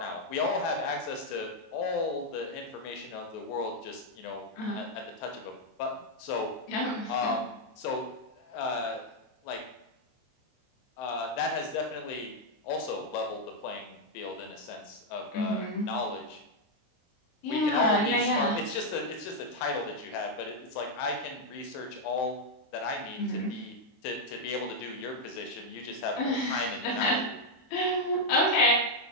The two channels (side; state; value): right; late; 23 ms